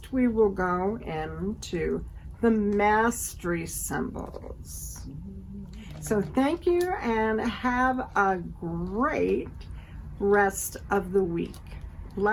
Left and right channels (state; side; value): identical; both; correlation 1.00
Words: we will go into the mastery symbols. So thank you and have a great rest of the week.